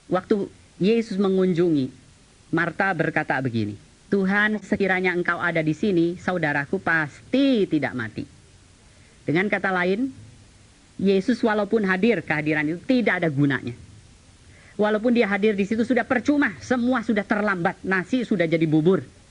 waktu Yesus mengunjungi, Marta berkata begini, Tuhan, sekiranya engkau ada di sini, saudaraku pasti tidak mati. Dengan kata lain, Yesus walaupun hadir, kehadiran itu tidak ada gunanya. Walaupun dia hadir di situ sudah percuma, semua sudah terlambat, nasi sudah jadi bubur.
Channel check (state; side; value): identical; both; correlation 1.00